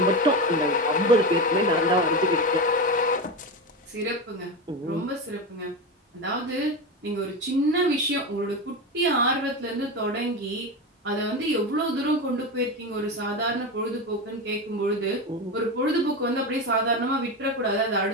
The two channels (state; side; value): normal; both; correlation 0.19